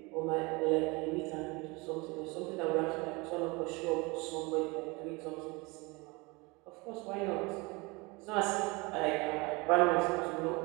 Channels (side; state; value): left; quieter; 25.8 dB